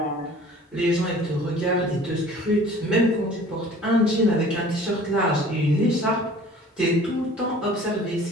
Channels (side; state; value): both; normal; correlation 0.47